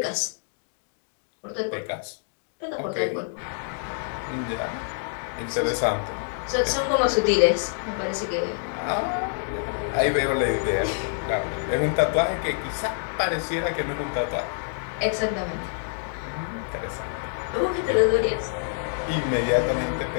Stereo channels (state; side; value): silent; right; digital silence